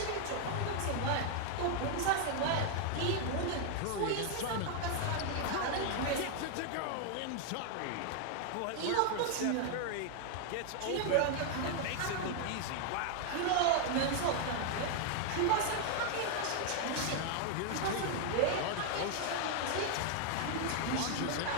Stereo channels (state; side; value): different; both; correlation 0.00